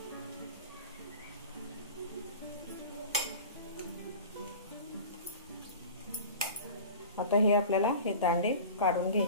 आता हे आपल्याला हे दांडे काढून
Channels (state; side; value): inverted; both; correlation -0.37